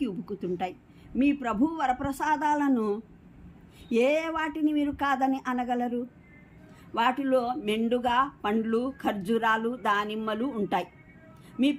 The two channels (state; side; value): identical; both; correlation 1.00